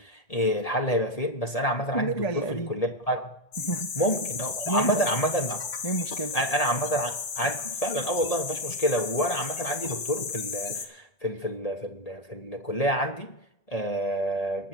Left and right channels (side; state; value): right; late; 1.8 ms